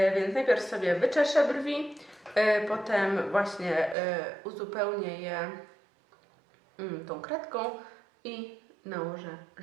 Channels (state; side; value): drops out; left; at 4.0 s